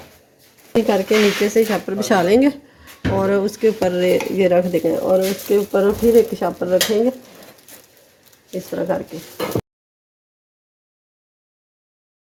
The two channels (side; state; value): both; identical; correlation 1.00